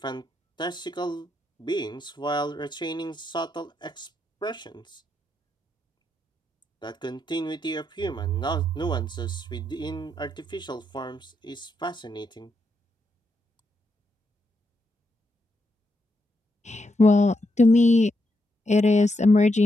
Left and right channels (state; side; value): normal; both; correlation 0.81